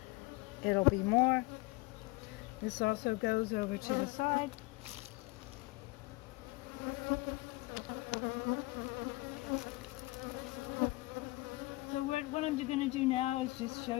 it'll be more. This also goes over to the side. So what I'm going to do now is just show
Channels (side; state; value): right; quieter; 22.3 dB